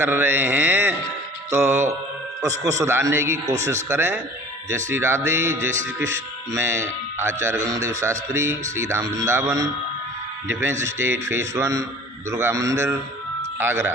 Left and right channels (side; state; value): both; normal; correlation 0.45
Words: रहे हैं तो उसको सुधारने की कोशिश करें। जय श्री राधे, जय श्री कृष्ण। मैं Acharya Gangadev Shastri, Shri Dham Vrindavan, defence state phase 1, Durga Mandir, Agra.